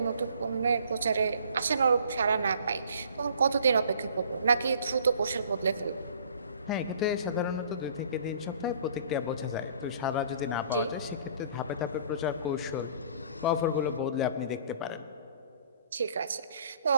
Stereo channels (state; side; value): inverted; both; correlation -0.54